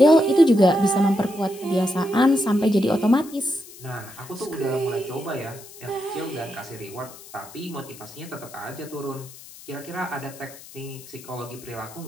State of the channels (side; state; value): left; noise; hiss, 18 dB below the sound